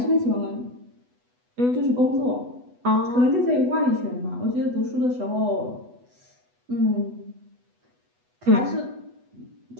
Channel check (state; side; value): late; left; 8.1 ms